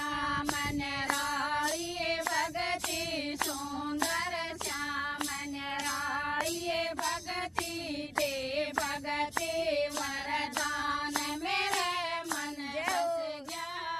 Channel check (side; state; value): both; identical; correlation 1.00